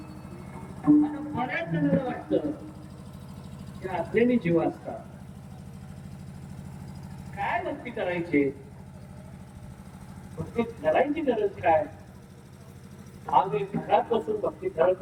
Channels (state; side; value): identical; both; correlation 1.00